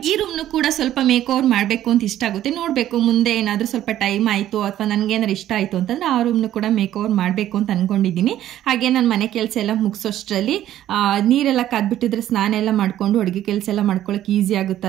ಈ ರೂಮ್ನು ಕೂಡ ಸ್ವಲ್ಪ ಮೇಕ್ ಓವರ್ ಮಾಡಬೇಕು ಅಂತ ಇಷ್ಟ ಆಗುತ್ತೆ. ನೋಡಬೇಕು ಮುಂದೆ ಏನಾದರೂ ಸ್ವಲ್ಪ ಟೈಮ್ ಆಯಿತು ಅಥವಾ ನನಗೇನಾದ್ರು ಇಷ್ಟ ಆಯಿತು ಅಂತಂದರೆ ಆ ರೂಮ್ನು ಕೂಡ ಮೇಕ್ ಓವರ್ ಮಾಡಬೇಕು ಅಂತ ಅಂದ್ಕೊಂಡಿದ್ದೀನಿ. ಹಾಗೆ ನಾನು ಮನೆ ಕೆಲಸ ಎಲ್ಲ ಮುಗಿಸೋಷ್ಟರಲ್ಲಿ ನೀರೆಲ್ಲ ಕಾದ್ಬಿಟ್ಟಿದ್ರೆ ಸ್ನಾನ ಎಲ್ಲ ಮಾಡಿಕೊಂಡು ಅಡುಗೆ ಕೆಲಸ ಎಲ್ಲ ಮಾಡ್ಕೊಳ್ಳೋಕೆ ಈಸಿ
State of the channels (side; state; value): left; quieter; 12.5 dB